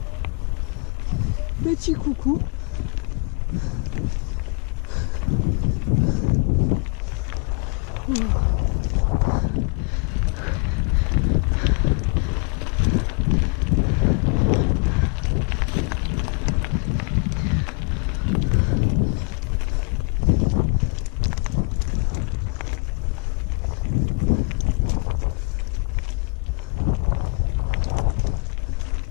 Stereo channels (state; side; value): quieter; right; 33.9 dB